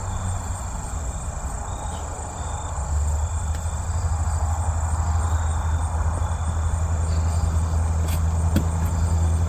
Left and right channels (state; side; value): identical; both; correlation 1.00